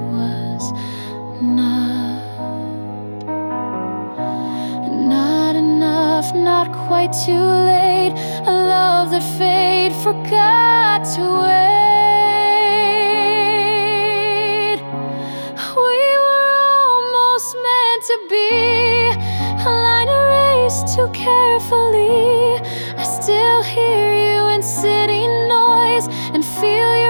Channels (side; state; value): both; inverted; correlation -1.00